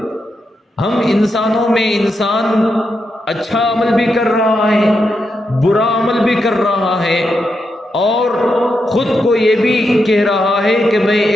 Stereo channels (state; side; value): normal; both; correlation 0.84